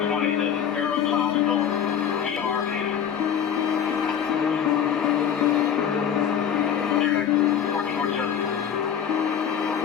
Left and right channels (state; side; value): quieter; right; 8.4 dB